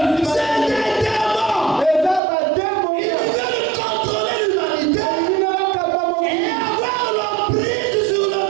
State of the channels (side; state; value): left; drops out; at 2.2 s